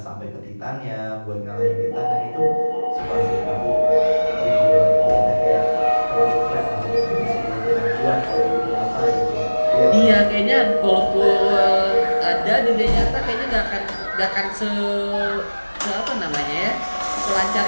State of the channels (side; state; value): both; inverted; correlation -1.00